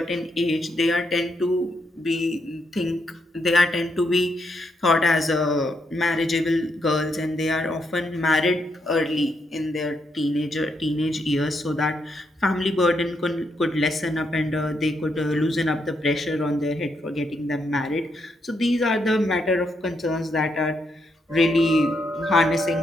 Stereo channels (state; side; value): normal; both; correlation 0.78